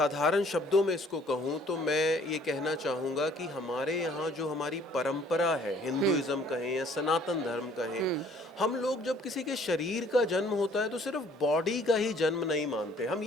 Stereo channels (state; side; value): normal; both; correlation 0.58